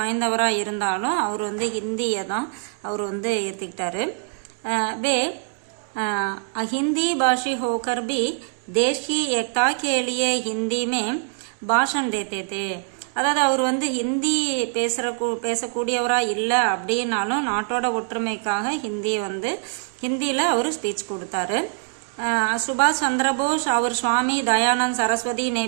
இருந்தாலும் அவர் வந்து ஹிந்தியை தான் அவர் வந்து ஏற்றுக்கிட்டாரு. வே हिंदी भाषी होकर भी देश की एकता के लिए हिंदी में भाषण देते थे. அதாவது அவர் வந்து ஹிந்தி பேசக்கூடியவராக இல்லை அப்படின்னாலும் நாட்டோட ஒற்றுமைக்காக ஹிந்தியில் அவர் ஸ்பீச் கொடுத்தாரு. சுபாஷ் சந்திர போஸ் அவர் சுவாமி தயானந்த் சரஸ்வதி ने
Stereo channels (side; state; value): left; silent; 63 dB below the other